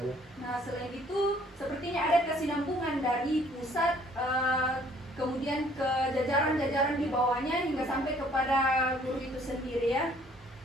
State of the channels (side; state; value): both; normal; correlation 0.60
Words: Nah, selain itu sepertinya ada kesinambungan dari pusat kemudian ke jajaran-jajaran di bawahnya hingga sampai kepada guru itu sendiri ya.